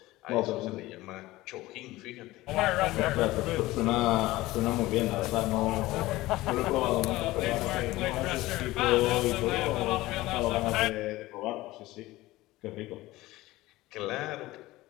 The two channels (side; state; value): right; quieter; 18.3 dB